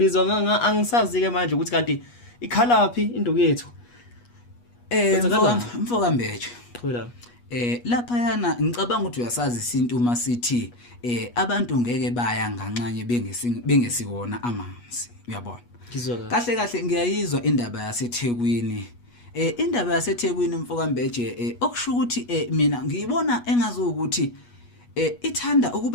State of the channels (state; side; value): late; right; 8.3 ms